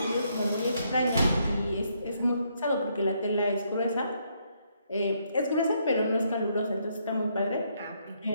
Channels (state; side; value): inverted; both; correlation -0.74